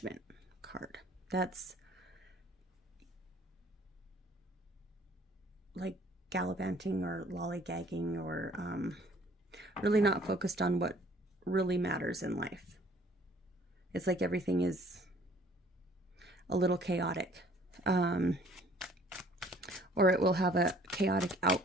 card. That's like gallivanting or lollygagging, or really not focused on what really matters in life. It's like everything is a little chaotic, or it will have a chaotic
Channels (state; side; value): normal; both; correlation 0.56